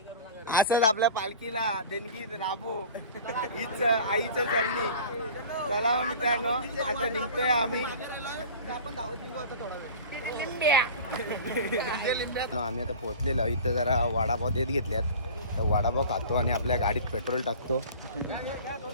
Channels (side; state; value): both; inverted; correlation -0.39